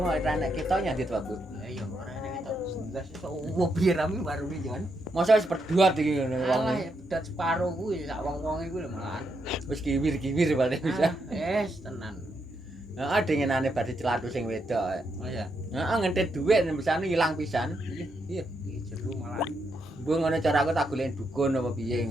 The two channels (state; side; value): normal; both; correlation 0.80